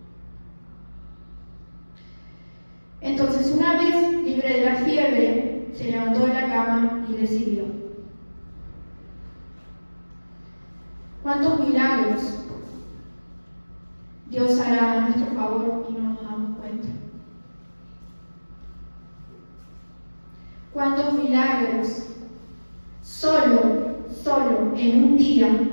Entonces, una vez libre de la fiebre, se levantó de la cama y le sirvió. ¿Cuántos milagros Dios hará a nuestro favor y no nos damos cuenta? ¿Cuántos milagros solo en un día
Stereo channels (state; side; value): inverted; both; correlation -1.00